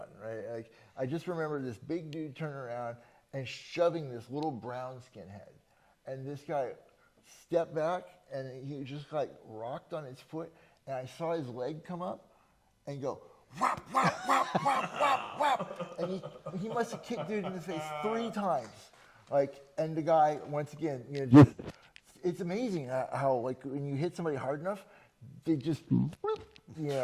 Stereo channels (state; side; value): identical; both; correlation 1.00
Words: right? I just remember this big dude turning around and shoving this little brown skinhead, and this guy stepped back and he just rocked on his foot, and I saw his leg come up and go whap whap whap whap whap whap, and he must have kicked dude in the face 3 times, and the guy once again, just. It's amazing how when you hit somebody hard enough, they just,